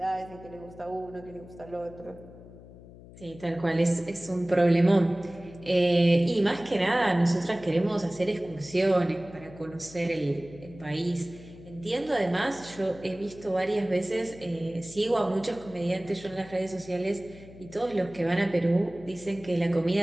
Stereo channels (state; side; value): noise; left; hum, 19 dB below the sound